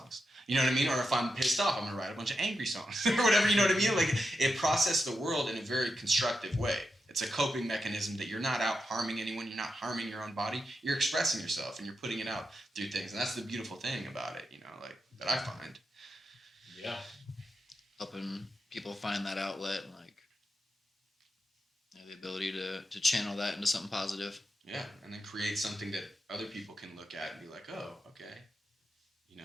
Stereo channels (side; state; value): both; normal; correlation 0.87